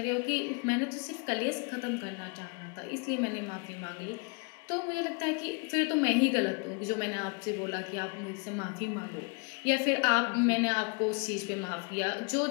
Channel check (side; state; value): right; quieter; 33.7 dB